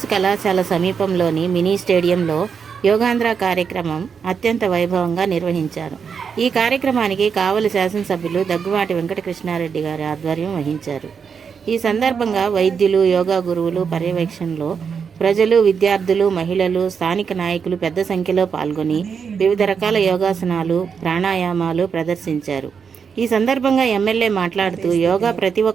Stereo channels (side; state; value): left; quieter; 6.4 dB